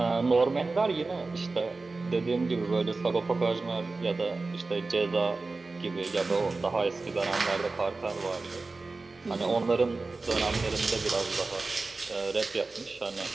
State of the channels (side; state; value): left; quieter; 3.6 dB